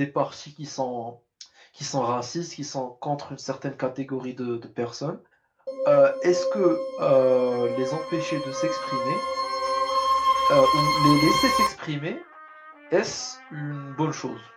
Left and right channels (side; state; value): both; identical; correlation 1.00